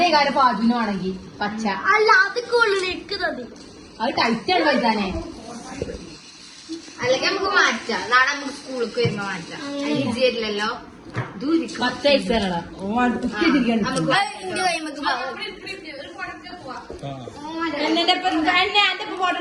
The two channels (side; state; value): both; identical; correlation 1.00